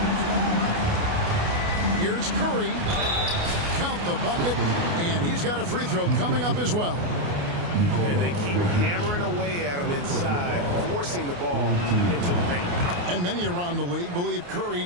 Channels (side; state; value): left; late; 29 ms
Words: Here's Curry. Count the bucket, and he's got a free throw coming up as well. And they keep hammering away at him inside, forcing the ball into the paint. And many around the league believe Curry